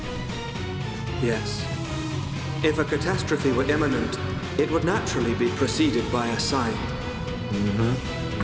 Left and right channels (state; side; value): identical; both; correlation 1.00